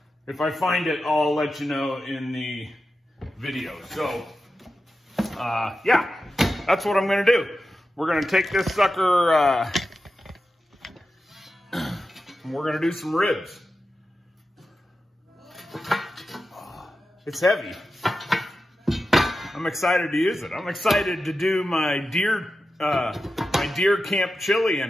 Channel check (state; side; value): normal; both; correlation 0.92